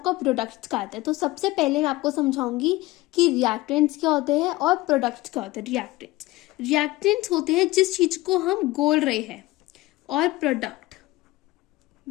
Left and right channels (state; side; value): quieter; right; 19.2 dB